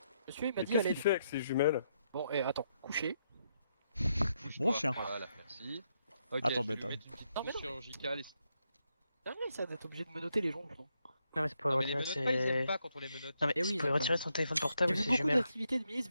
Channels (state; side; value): inverted; both; correlation -0.79